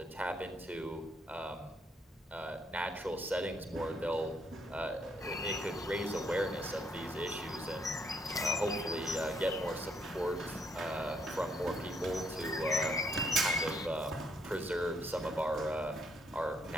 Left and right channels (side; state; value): both; normal; correlation 0.71